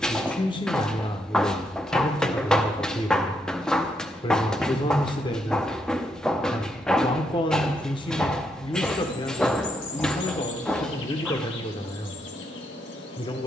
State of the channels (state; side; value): normal; both; correlation 0.78